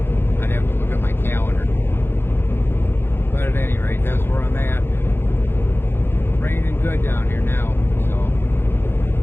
I'd have to look at my calendar. But at any rate, that's where I'm at. Raining good down here now, so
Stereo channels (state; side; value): late; right; 0.11 ms